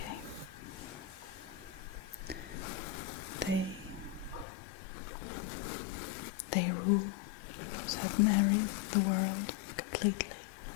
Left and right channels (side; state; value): right; drops out; at 4.5 s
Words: They rule certain areas of the world completely.